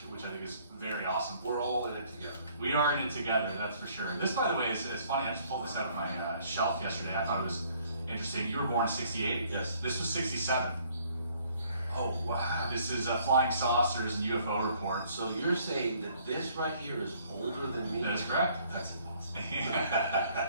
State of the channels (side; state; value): both; inverted; correlation -0.62